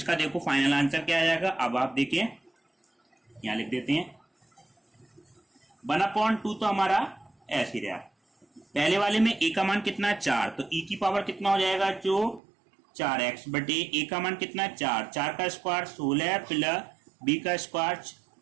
देखो फाइनल आंसर क्या आ जाएगा, अब आप देखिए यहाँ लिख देते हैं 1/2 तो हमारा ऐसे रहा, पहले वाले में a का मान कितना 4 तो e की पावर कितना हो जाएगा जो 4x बटे a का मान कितना 4 का स्क्वायर 16 प्लस b का स्क्वायर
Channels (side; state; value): left; drops out; at 12.4 s